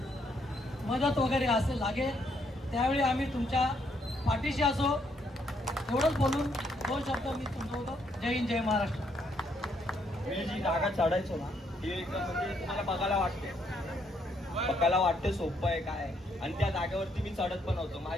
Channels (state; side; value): normal; both; correlation 0.72